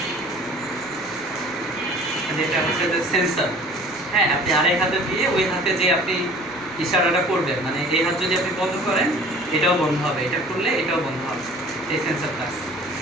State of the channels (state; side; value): noise; right; rumble, 29 dB below the sound